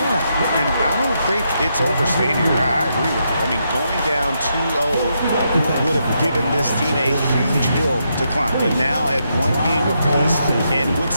And I don't think it's overstated. I agree with you. I mean, going down 2-0 would have given this team a huge hill to climb. But now at one game apiece and with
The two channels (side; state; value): both; inverted; correlation -0.80